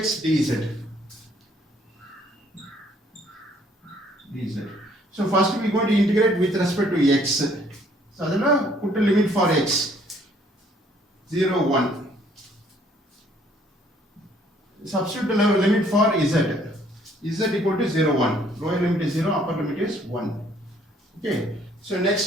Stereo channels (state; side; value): normal; both; correlation 0.62